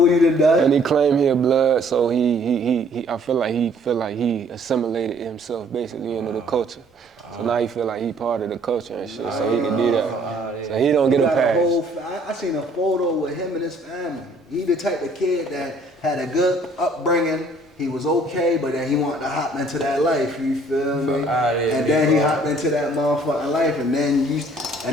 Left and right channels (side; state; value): both; normal; correlation 0.59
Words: he done done. And he claimed he a blood, so I feel like he assimilated himself basically into the culture. So now he feel like he part of the culture and shit, so he can do that. So he don't get a pass. I seen a photo with him and his family. He the type of kid that had a good upbringing. He was okay, but then he wanted to hop into that life, you feel me? And then he hopped into that motherfucking life, and then a